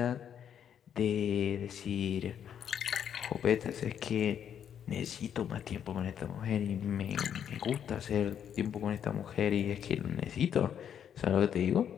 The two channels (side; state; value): right; quieter; 8.9 dB